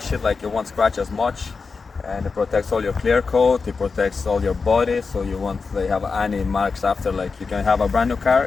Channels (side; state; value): right; quieter; 4.7 dB